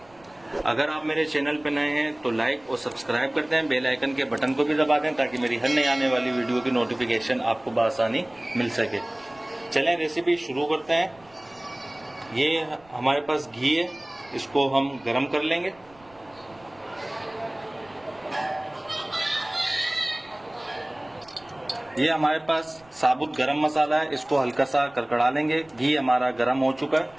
अगर आप मेरे चैनल पर नए हैं तो लाइक और सब्सक्राइब करते हैं, बेल आइकन के बटन को भी दबा दें ताकि मेरी हर नई आने वाली वीडियो की नोटिफिकेशन आपको बआसानी मिल सके। चलें रेसिपी शुरू करते हैं। ये हमारे पास घी है, इसको हम गर्म कर लेंगे। ये हमारे पास साबुत गरम मसाला है, इसको हल्का सा कड़कड़ा लेंगे। घी हमारा गरम हो चुका है।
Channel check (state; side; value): noise; right; rumble, 29 dB below the sound